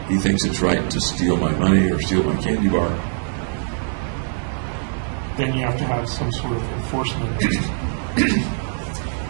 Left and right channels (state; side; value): silent; left; 57 dB below the other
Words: He thinks it's right to steal my money or steal my candy bar. Then you have to have some sort of enforcement